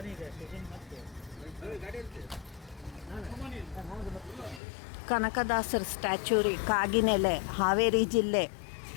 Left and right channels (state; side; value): drops out; right; at 4.6 s